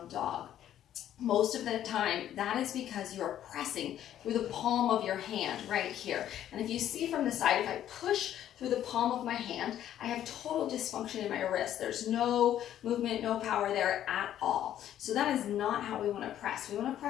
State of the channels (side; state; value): right; quieter; 11.3 dB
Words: dog. Most of the time, that is because you're pressing through the palm of your hand right here. And if you see from the side, if I push through the palm of my hand, I have total dysfunction in my wrist. There's no movement, no power there at all. So that is not how we want to press. We want to